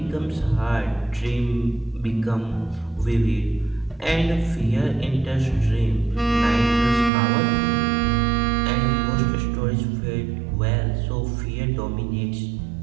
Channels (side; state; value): left; drops out; at 7.1 s